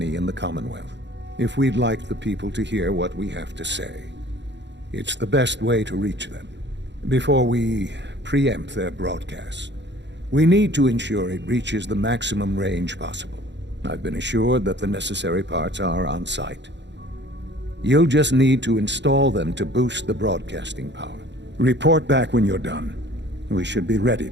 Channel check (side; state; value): left; late; 0.52 ms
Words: in the Commonwealth. If we'd like the people to hear what we have to say, it's the best way to reach them. Before we preempt their broadcast, we need to ensure it reaches the maximum range possible. I've been assured that the necessary parts are on site. You'll just need to install them to boost the broadcasting power. Report back when you're done. We should be ready